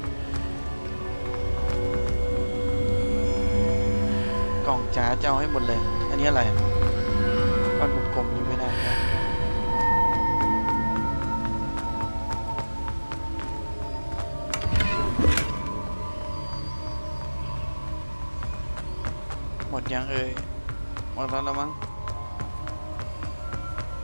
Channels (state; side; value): inverted; both; correlation -1.00